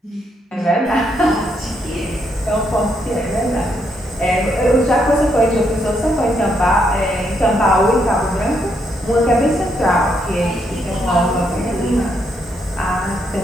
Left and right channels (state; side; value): normal; both; correlation 0.76